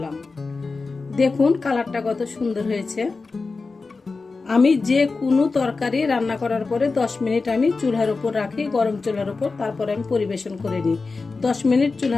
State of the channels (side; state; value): right; quieter; 4.1 dB